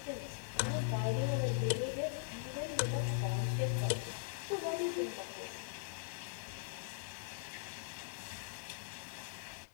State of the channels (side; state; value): right; silent; digital silence